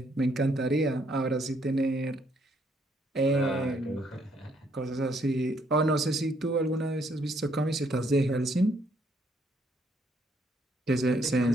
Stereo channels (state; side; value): normal; both; correlation 0.69